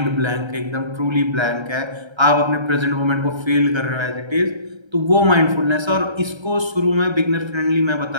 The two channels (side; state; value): left; late; 1.3 ms